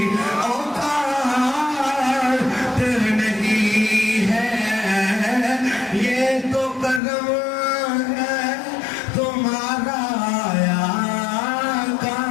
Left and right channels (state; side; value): drops out; right; at 7.0 s